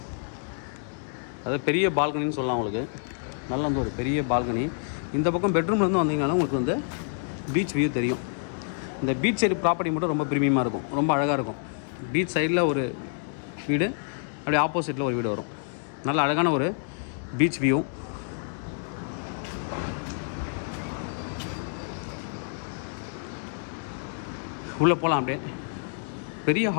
அதாவது பெரிய பால்கனின்னு சொல்லலாம். உங்களுக்கு நல்ல வந்து ஒரு பெரிய பால்கனி. இந்த பக்கம் பெட்ரூம்லேருந்து வந்தீங்கனாலும் உங்களுக்கு வந்து பீச் வியூ தெரியும். இந்த பீச் சைடு ப்ராப்பர்ட்டி மட்டும் ரொம்ப ப்ரீமியமாக இருக்கும், ரொம்ப அழகாக இருக்கும். பீச் சைடில் ஒரு வீடு, அப்படியே ஆப்போசிட்டில் ஒரு வீடு வரும். நல்ல அழகான ஒரு பீச் வியூ. உள்ளே போகலாம். அப்படியே பெரிய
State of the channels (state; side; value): silent; right; digital silence